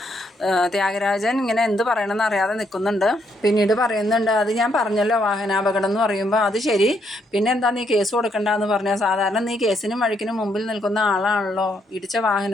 ത്യാഗരാജൻ ഇങ്ങനെ എന്ത് പറയണമെന്ന് അറിയാതെ നിൽക്കുന്നുണ്ട്. പിന്നീട് പറയുന്നുണ്ട്, അത് ഞാൻ പറഞ്ഞല്ലോ വാഹനാപകടം എന്ന് പറയുമ്പോൾ അത് ശരി, പിന്നെ എന്താ നീ കേസ് കൊടുക്കണ്ടെന്ന് പറഞ്ഞാൽ, സാധാരണ നീ കേസിനും വഴിക്കിനും മുമ്പിൽ നിൽക്കുന്ന ആളാണല്ലോ, ഇടിച്ച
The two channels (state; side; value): normal; both; correlation 0.74